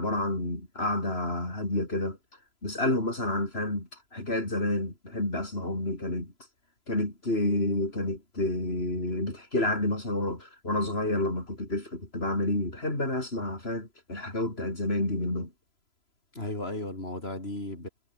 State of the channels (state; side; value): late; right; 3.0 ms